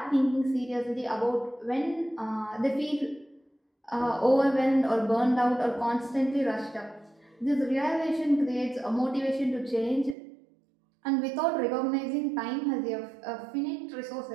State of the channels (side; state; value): left; drops out; at 10.2 s